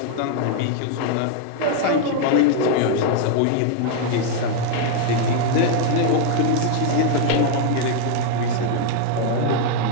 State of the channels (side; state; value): both; different; correlation 0.00